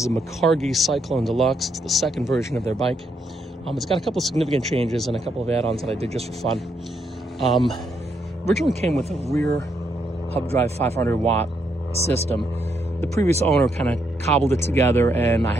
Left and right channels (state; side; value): normal; both; correlation 0.77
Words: a MICARGI CYCLONE Deluxe. It's the second version of their bike. It's got a couple of significant changes and a couple of add-ons that I did just for fun. Originally came with a rear hub drive 500 watt system. The previous owner kind of cobbled it together and I